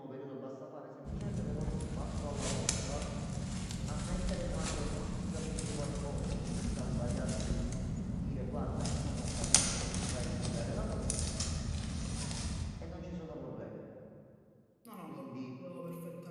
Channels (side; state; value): both; identical; correlation 1.00